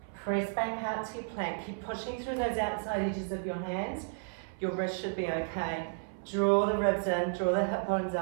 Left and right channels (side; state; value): left; silent; 56 dB below the other